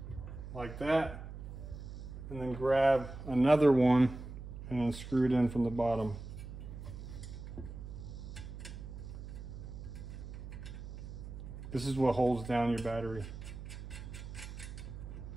like that. And then grab another one and then screw it in from the bottom. This is what holds down your battery.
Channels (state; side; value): noise; right; hum, 10 dB below the sound